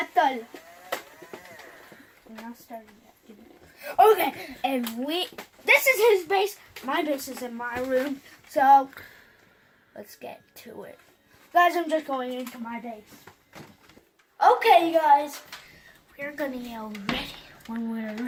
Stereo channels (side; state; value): both; identical; correlation 1.00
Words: We're not starting yet. Okay, and this is his base. My base is in my room, so let's get to it. Guys, I'm just going into my base. Okay, guys, we're gonna yell ready when we're